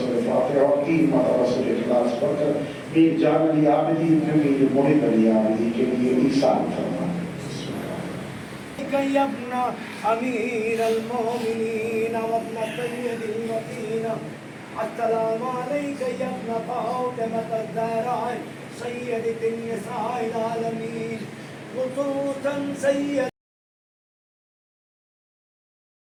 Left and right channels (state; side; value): identical; both; correlation 1.00